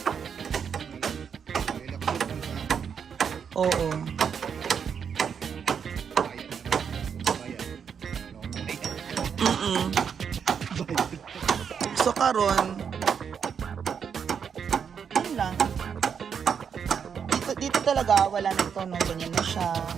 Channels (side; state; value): left; quieter; 7.1 dB